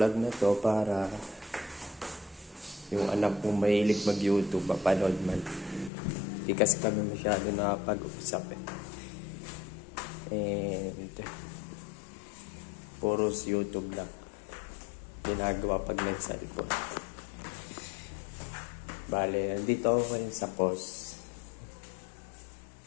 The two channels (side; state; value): right; drops out; at 5.9 s